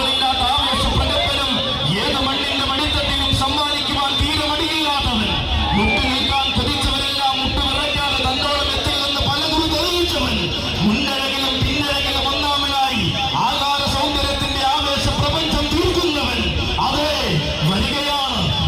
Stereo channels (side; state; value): both; identical; correlation 1.00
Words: ആവേശ പ്രകമ്പനം ഏത് മണ്ണിന്റെ മടിത്തട്ടിലും സമ്മാനിക്കുവാൻ തീരെ മടിയില്ലാത്തവൻ മുട്ടു നിൽക്കാൻ കൊതിച്ചവരെല്ലാം മുട്ടുവിറയ്ക്കാതെ തന്നോളം എത്തില്ലെന്ന് പലകുറി തെളിയിച്ചവൻ മുന്നഴകിലും പിന്നഴകിലും ഒന്നാമനായി ആകാര സൗന്ദര്യത്തിന്റെ ആവേശ പ്രപഞ്ചം തീർക്കുന്നവൻ അതെ വരികയാണ്.